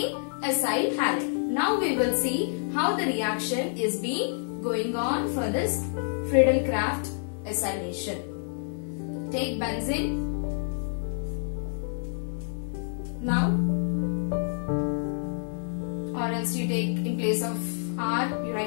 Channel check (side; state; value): right; silent; digital silence